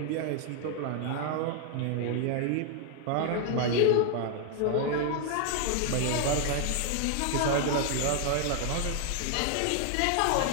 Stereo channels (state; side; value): different; both; correlation 0.00